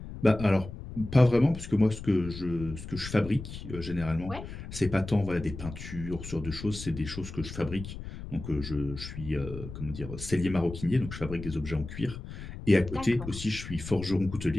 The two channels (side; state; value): left; noise; rumble, 10 dB below the sound